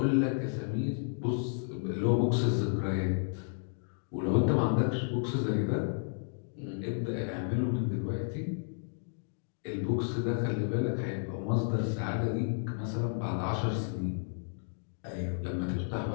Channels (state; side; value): silent; right; digital silence